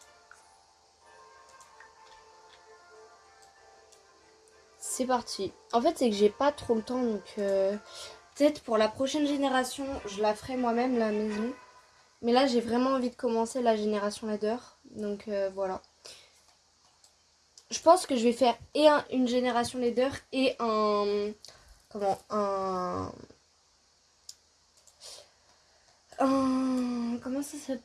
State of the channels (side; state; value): both; identical; correlation 1.00